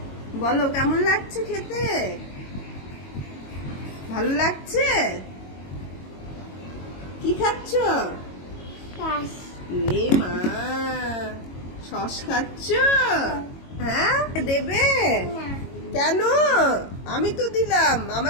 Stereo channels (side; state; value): right; late; 22 ms